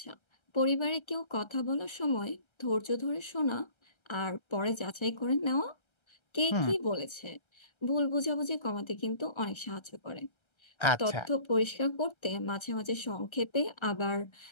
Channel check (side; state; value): right; late; 1.3 ms